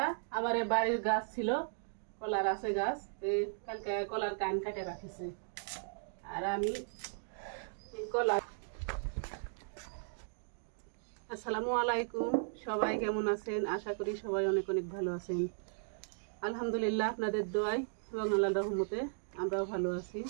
আমার বাড়ির গাছ ছিল, কলার আছে গাছ, কালকে কলার কান কাটে রাখিছে। আর আমি কলা। আসসালামু আলাইকুম, সবাই কেমন আছেন? আশা করি সবাই অনেক অনেক ভালো আছেন। আলহামদুলিল্লাহ আপনাদের দোয়ায় এবং আল্লাহর রহমতে আমরাও ভালো আছি।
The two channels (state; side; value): silent; left; digital silence